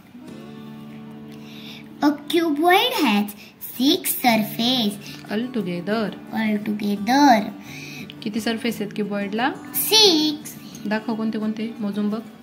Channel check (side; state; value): both; identical; correlation 1.00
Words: A cuboid has 6 surface all together. किती सरफेस आहेत क्युबॉइडला? 6. दाखव कोणते कोणते, मोजून बघ.